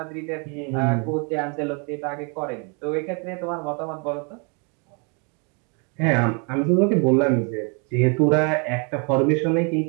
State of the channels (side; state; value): left; quieter; 35.5 dB